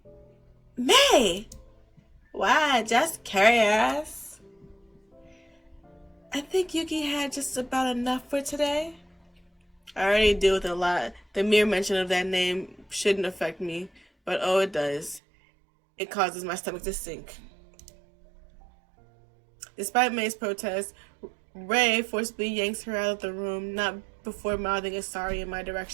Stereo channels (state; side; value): drops out; left; at 15.2 s